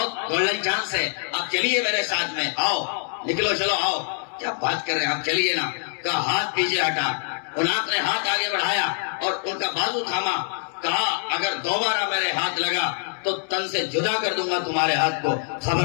گولڈن چانس ہے, آپ چلیے میرے ساتھ میں, آؤ نکلو چلو آؤ. کیا بات کر رہے ہیں آپ, چلیے نا. کہا ہاتھ پیچھے ہٹا, ان آپ نے ہاتھ آگے بڑھایا اور ان کا بازو تھاما. کہا اگر دوبارہ میرے ہاتھ لگا تو تن سے جدا کر دوں گا تمہارے ہاتھ کو,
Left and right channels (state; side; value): silent; right; 56 dB below the other